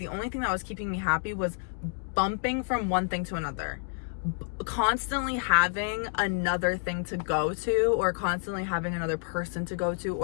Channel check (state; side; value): silent; right; 56 dB below the other